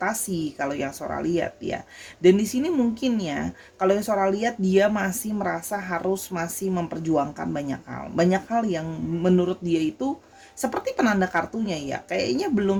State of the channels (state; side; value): identical; both; correlation 1.00